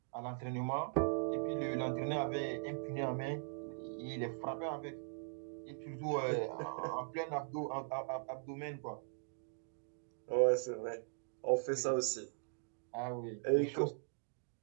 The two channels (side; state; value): left; silent; digital silence